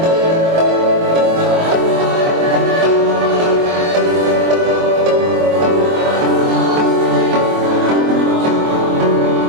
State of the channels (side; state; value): left; late; 24 ms